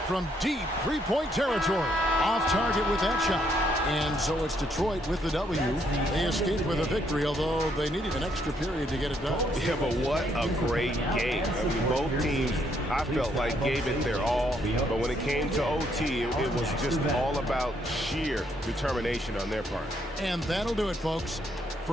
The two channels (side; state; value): both; normal; correlation 0.72